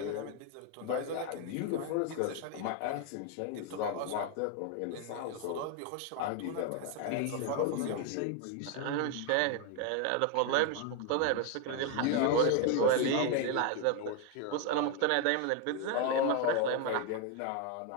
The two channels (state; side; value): different; both; correlation 0.01